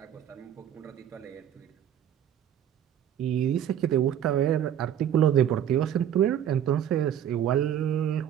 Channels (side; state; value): left; quieter; 10.0 dB